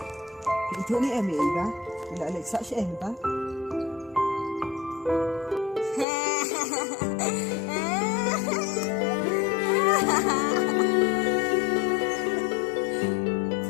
chỗ này em ý ba, lại lại sợ em ta.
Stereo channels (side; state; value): right; drops out; at 6.1 s